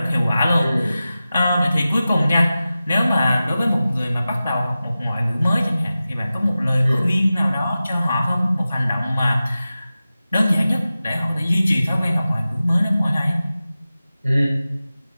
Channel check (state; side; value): inverted; both; correlation -0.95